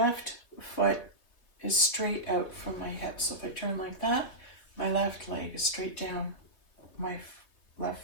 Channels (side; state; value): right; late; 3.3 ms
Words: foot is straight out from my hip. So if I turn like that, my left leg is straight down. My